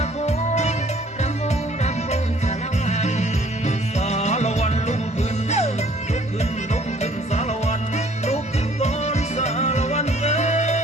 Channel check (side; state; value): both; normal; correlation 0.58